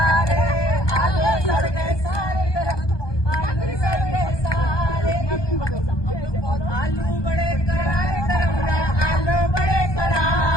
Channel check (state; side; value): late; right; 1.2 ms